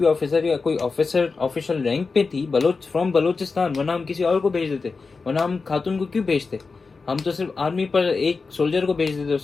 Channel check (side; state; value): right; quieter; 4.4 dB